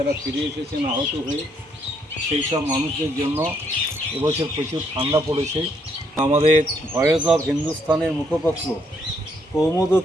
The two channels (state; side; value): normal; both; correlation 0.72